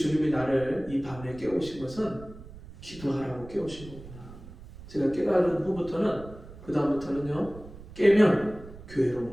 나를 이 밤에 깨우신 것은 기도하라고 깨우신 거구나. 제가 깨달은 후부터는 그 다음부터는요, 깨면 교회로 오는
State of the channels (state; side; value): noise; right; rumble, 16 dB below the sound